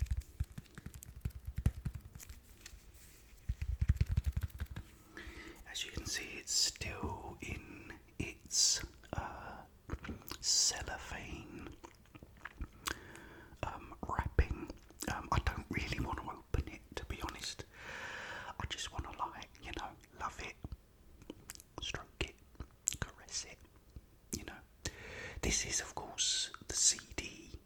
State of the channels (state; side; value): identical; both; correlation 1.00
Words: As you can see, it's still in its cellophane wrapping. I don't really want to open it, to be honest. I just want to, love it, stroke it, caress it. This is, of course, the CD